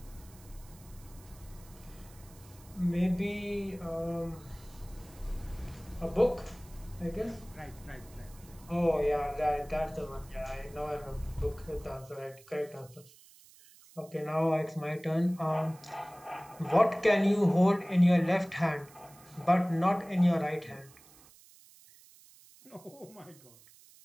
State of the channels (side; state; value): right; noise; hiss, 24 dB below the sound